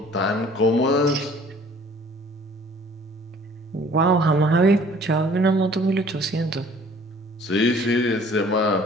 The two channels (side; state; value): both; normal; correlation 0.53